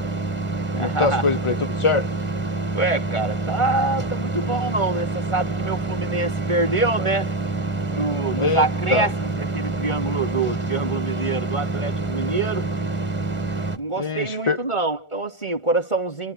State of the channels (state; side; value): late; right; 1.4 ms